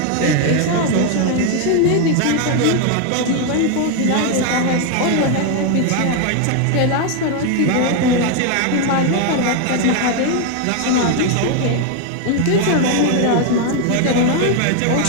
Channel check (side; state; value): both; different; correlation 0.01